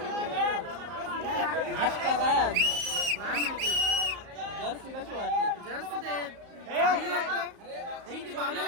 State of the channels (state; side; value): late; left; 34 ms